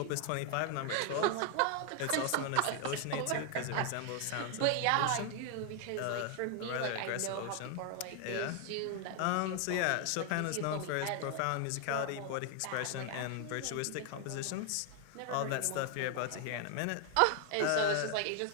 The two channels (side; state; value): both; different; correlation 0.00